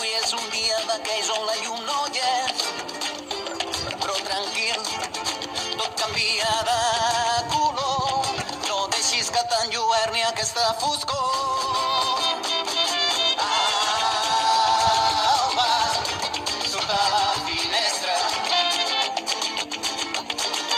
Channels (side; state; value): both; identical; correlation 1.00